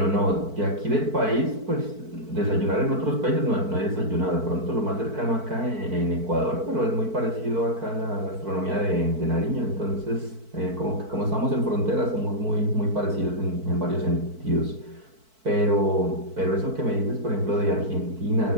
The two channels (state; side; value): late; left; 4.5 ms